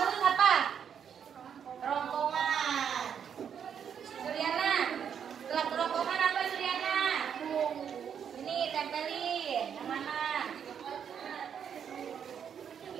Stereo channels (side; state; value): left; quieter; 8.0 dB